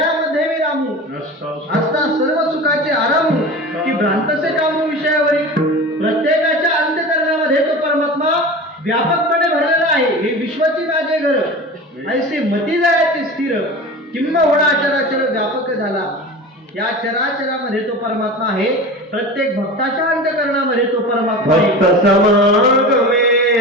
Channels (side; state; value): both; normal; correlation 0.32